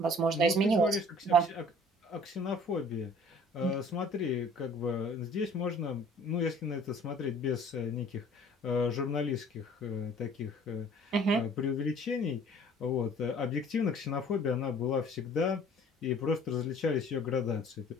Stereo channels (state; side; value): normal; both; correlation 0.52